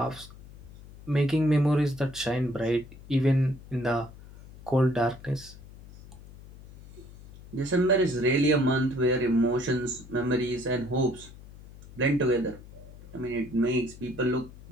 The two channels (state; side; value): noise; left; hum, 18 dB below the sound